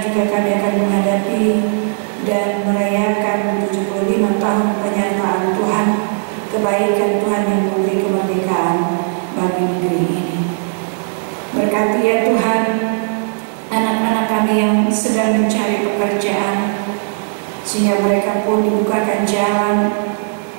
juga kami akan menghadapi dan merayakan 75 tahun penyertaan Tuhan, kebaikan Tuhan yang memberi kemerdekaan bagi negeri ini. Berkati ya Tuhan anak-anak kami yang sedang mencari pekerjaan, sehingga mereka pun dibukakan jalan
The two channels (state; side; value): silent; left; digital silence